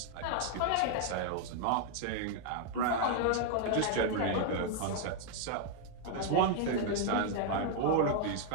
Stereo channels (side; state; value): both; different; correlation 0.00